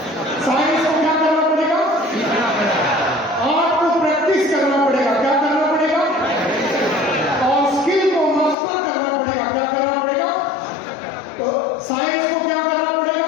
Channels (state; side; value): drops out; right; at 8.6 s